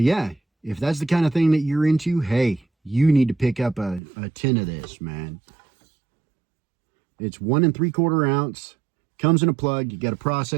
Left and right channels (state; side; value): drops out; left; at 4.0 s